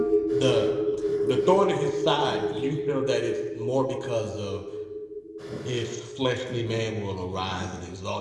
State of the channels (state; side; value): identical; both; correlation 1.00